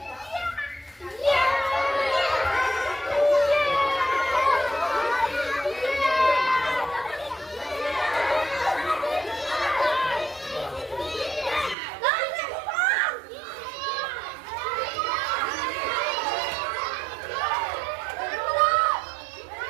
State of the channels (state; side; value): drops out; left; at 11.8 s